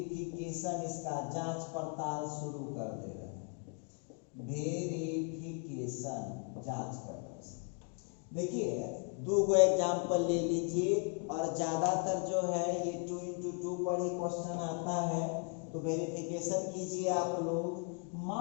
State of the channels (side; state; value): right; quieter; 37.4 dB